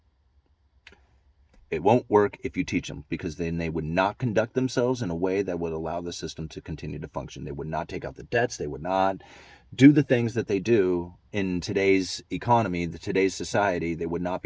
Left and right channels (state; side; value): identical; both; correlation 1.00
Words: It won't work if you teach them, because then they would not conduct themselves in a way that would allow the system to continue to function. They would not take out the debts. They would not do the things that they do in today's economy, today's society. They would not